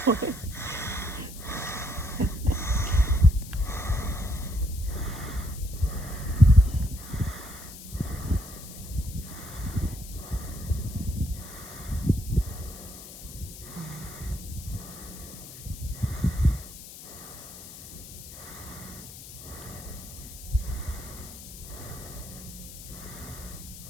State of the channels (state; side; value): noise; left; hiss, 14 dB below the sound